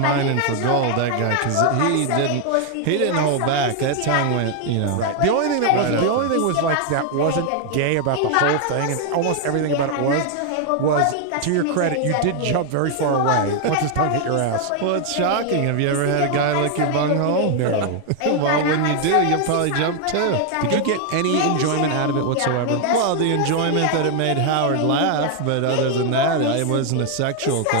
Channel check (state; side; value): different; both; correlation 0.00